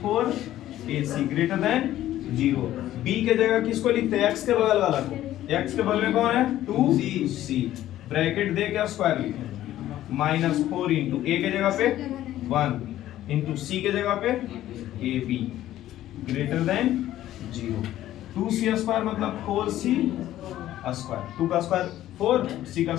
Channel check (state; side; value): quieter; right; 13.5 dB